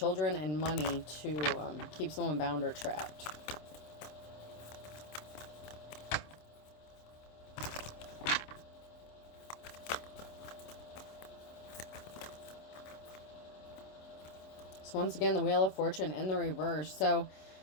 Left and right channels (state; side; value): late; right; 26 ms